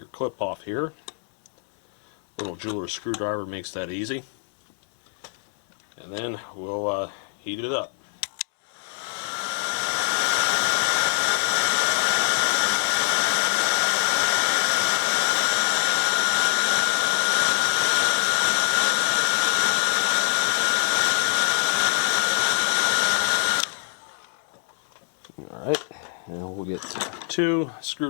clip off here. Little jeweler's screwdriver makes that easy. And then we'll heat it up. 2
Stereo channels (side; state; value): right; silent; 62 dB below the other